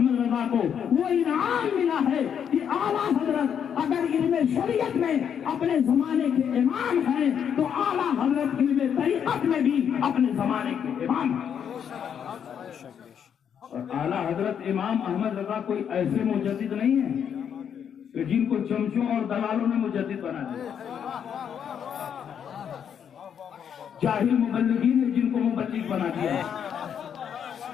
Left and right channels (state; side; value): quieter; right; 8.2 dB